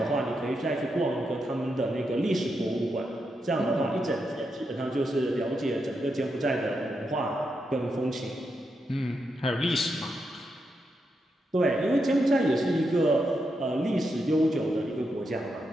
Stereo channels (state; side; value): normal; both; correlation 0.84